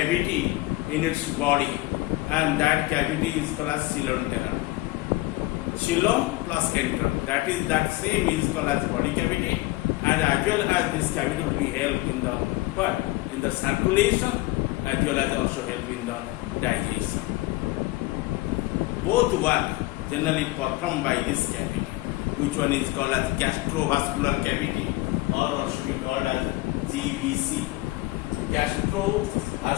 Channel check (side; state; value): right; quieter; 19.8 dB